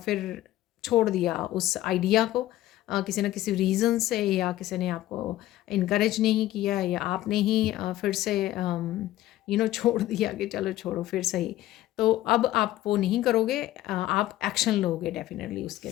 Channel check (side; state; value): right; quieter; 14.9 dB